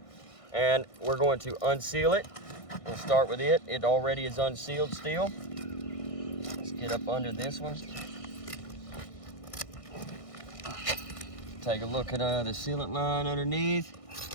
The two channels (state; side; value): late; right; 1.6 ms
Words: and we're going to unseal it. We'll start with it. It already is unsealed still. Let's get up under this one. Take a look at the sealant line underneath.